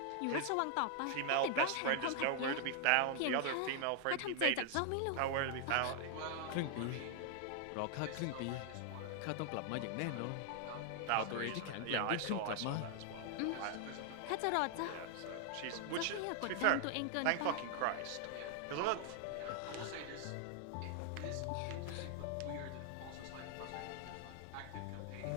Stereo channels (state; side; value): different; both; correlation 0.00